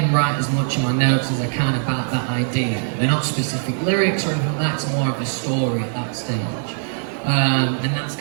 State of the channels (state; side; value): silent; left; digital silence